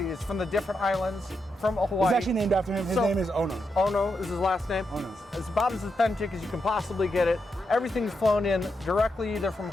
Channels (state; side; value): normal; both; correlation 0.84